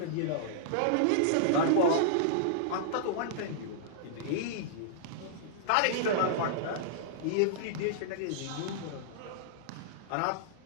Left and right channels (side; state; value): both; different; correlation -0.02